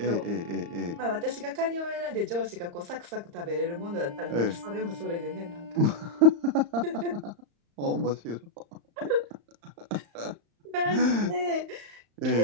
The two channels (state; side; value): late; left; 35 ms